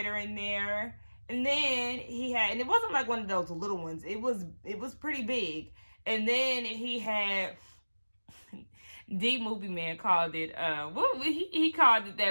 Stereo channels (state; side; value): inverted; both; correlation -1.00